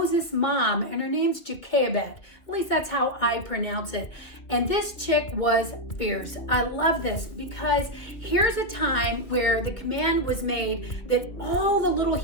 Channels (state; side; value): late; right; 2.5 ms